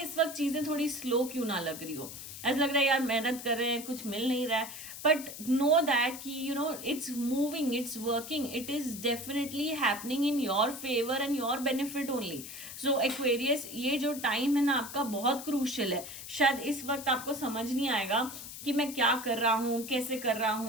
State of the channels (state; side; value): noise; left; hiss, 11 dB below the sound